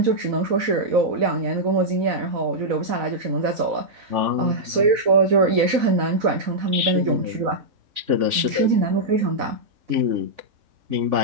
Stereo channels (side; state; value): left; late; 3.5 ms